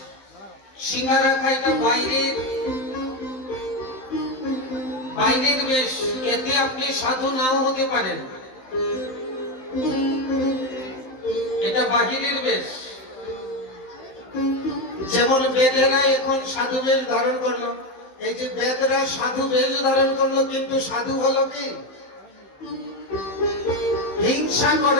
সিঙ্গারা খাইতে বাইরের বেশ, এতে আপনি সাধু নাও হতে পারেন। এটা বাহিরের বেশ। যেমন বেদেরা এখন সাধু বেশ ধারণ করলো, এই যে বেদরা সাধু বেশ ধারণ করলো, কিন্তু সাধু হলো কি? হিংসা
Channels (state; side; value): late; right; 15 ms